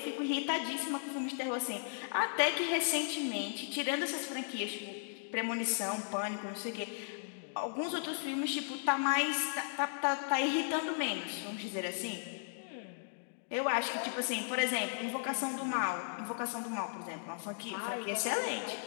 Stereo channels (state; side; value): silent; right; digital silence